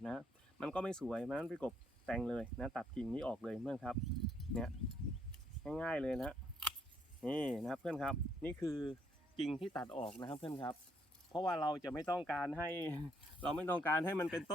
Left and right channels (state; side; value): normal; both; correlation 0.70